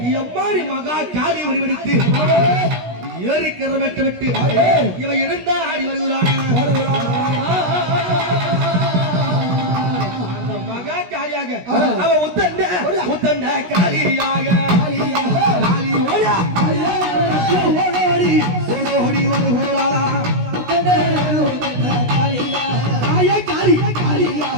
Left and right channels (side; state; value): left; late; 16 ms